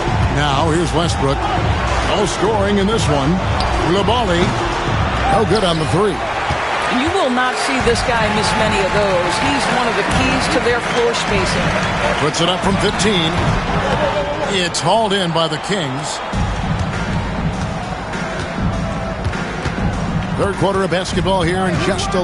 Now here's Westbrook. No scoring in this one. Coulibaly, no good on the 3. You will not see this guy miss many of those. He's one of the keys to their floor spacing. Puts it up from 15. It's hauled in by the Kings. Third quarter of basketball here, and just a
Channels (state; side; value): identical; both; correlation 1.00